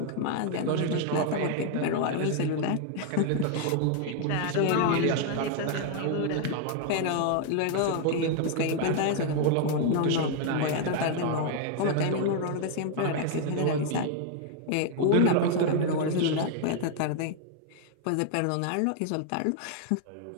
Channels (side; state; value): both; different; correlation 0.00